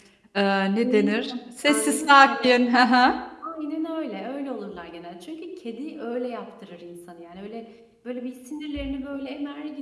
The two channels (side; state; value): both; identical; correlation 1.00